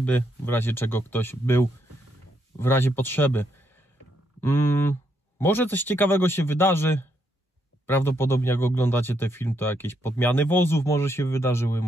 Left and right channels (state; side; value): normal; both; correlation 0.77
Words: w razie czego ktoś był w razie potrzeby. Może coś ciekawego się wydarzy. Prawdopodobnie jak oglądacie ten film, to jakieś podmiany wozów może się wydarzyły,